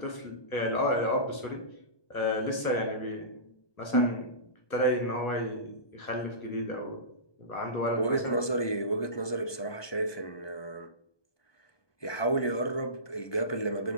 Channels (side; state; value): right; late; 1.2 ms